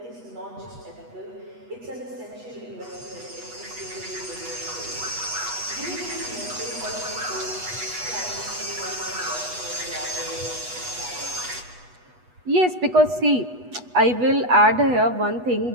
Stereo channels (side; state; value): left; late; 8.2 ms